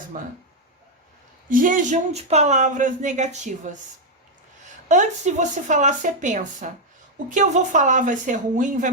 Jejum de palavras negativas. Antes de você falar, você pensa: o que eu vou falar vai ser ruim, vai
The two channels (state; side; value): normal; both; correlation 0.01